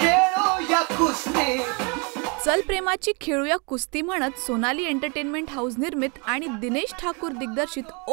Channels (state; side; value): quieter; left; 32.7 dB